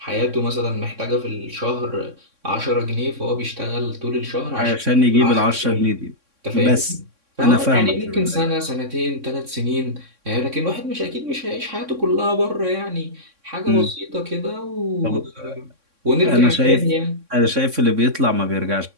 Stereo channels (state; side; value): late; left; 3.6 ms